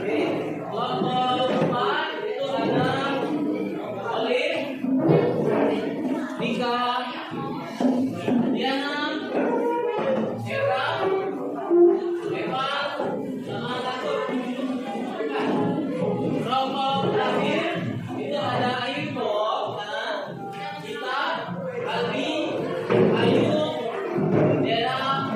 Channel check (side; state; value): both; identical; correlation 1.00